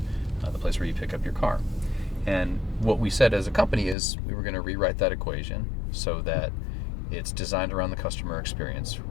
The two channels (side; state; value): right; drops out; at 4.0 s